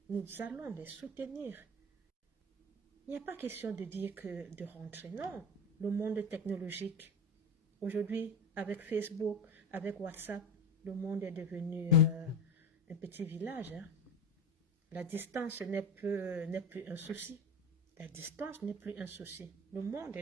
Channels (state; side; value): normal; both; correlation 0.25